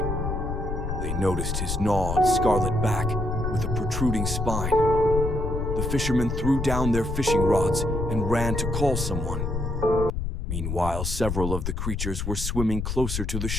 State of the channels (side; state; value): left; noise; rumble, 3 dB below the sound